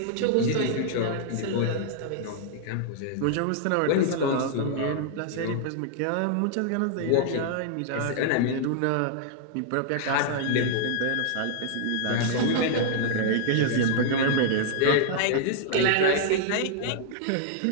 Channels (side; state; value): both; different; correlation -0.01